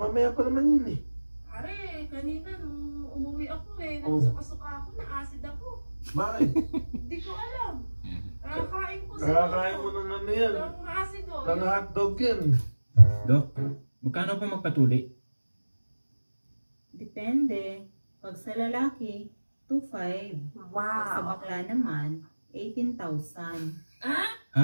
pa naman yun eh. Pare, kanina nung umuwi ako eh, Oh. nagsuka-suka ako, na-acid ako. Bakit? Hindi ko alam. Nakakain ko sa Nakakain mo ng ano yan. ng acid oh. Ng hotdog yan. Dok, magkano po magpatuli? Depende. Pag sa lalaki, 2,500. Pag sa bakla naman, 18,000.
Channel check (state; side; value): inverted; both; correlation -1.00